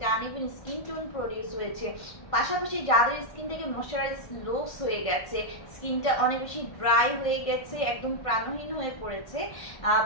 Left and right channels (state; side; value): late; right; 1.5 ms